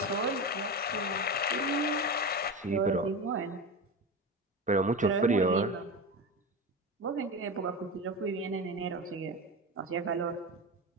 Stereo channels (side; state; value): both; normal; correlation 0.23